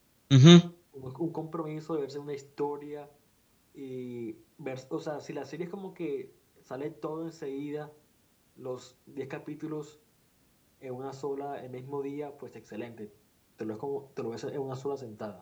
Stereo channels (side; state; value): both; identical; correlation 1.00